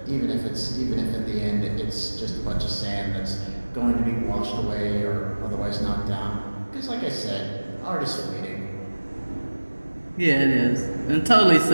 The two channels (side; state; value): both; inverted; correlation -1.00